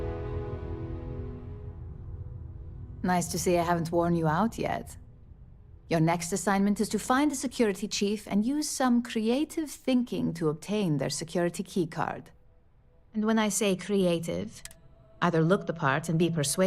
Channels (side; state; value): both; identical; correlation 1.00